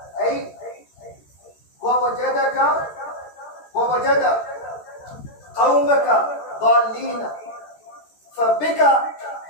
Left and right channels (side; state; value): right; late; 13 ms